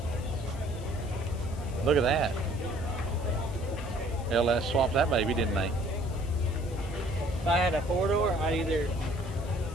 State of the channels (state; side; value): noise; left; hiss, 21 dB below the sound